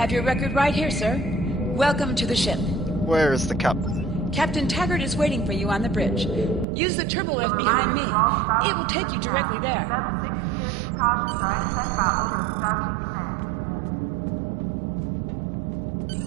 your record right here, sir. Welcome to the ship. Where is the captain? Captain Taggart is waiting for you on the bridge. Use the turbo lift behind me. It will take you directly there.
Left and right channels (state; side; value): drops out; left; at 6.7 s